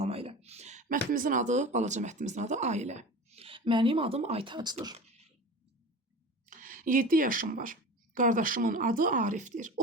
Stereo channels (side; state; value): both; normal; correlation 0.34